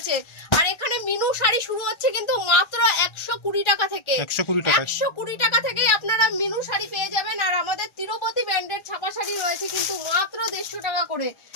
আর এখানে মিনু শাড়ি শুরু হচ্ছে কিন্তু মাত্র 120 টাকা থেকে 120 টাকা থেকেই আপনারা মিনু শাড়ি পেয়ে যাবেন। আর আমাদের তিরুপতি ব্র্যান্ডের ছাপা শাড়ি রয়েছে কিন্তু মাত্র 150 টাকা করে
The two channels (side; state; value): right; late; 1.3 ms